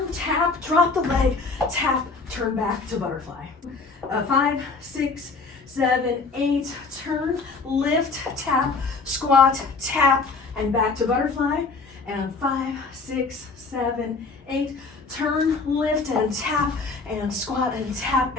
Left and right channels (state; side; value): quieter; right; 4.2 dB